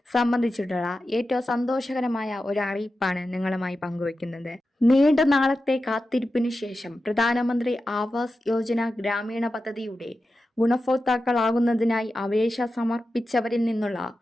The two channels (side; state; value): both; normal; correlation 0.92